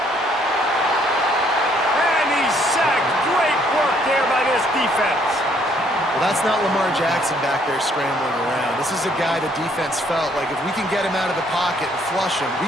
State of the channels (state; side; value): normal; both; correlation 0.66